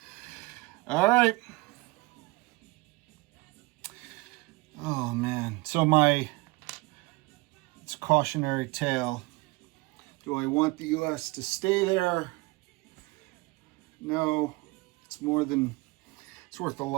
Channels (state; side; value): quieter; left; 24.1 dB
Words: All right. Oh man. So it's a cautionary tale. Do I want the US to stay there? No. It's worth a